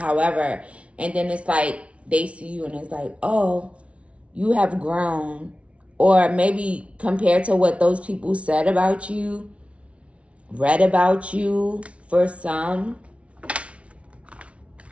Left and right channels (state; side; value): late; left; 0.062 ms